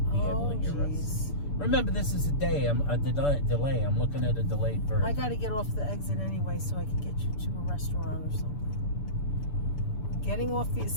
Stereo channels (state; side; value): late; right; 6.9 ms